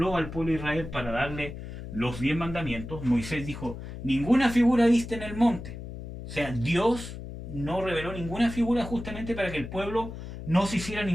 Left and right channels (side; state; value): left; noise; hum, 10 dB below the sound